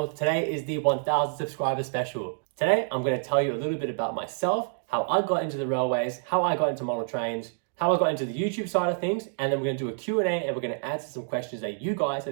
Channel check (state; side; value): silent; left; digital silence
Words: Today is the 1000 subscriber special. Today, I'm going to tell you a little bit about myself, how I got into the railways, how I got into model trains, how I got into the YouTube side of things, and then we're going to do a Q&A and we're going to answer some questions that you guys